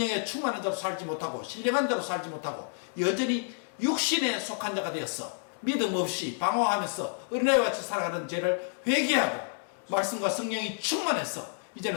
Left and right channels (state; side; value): silent; right; digital silence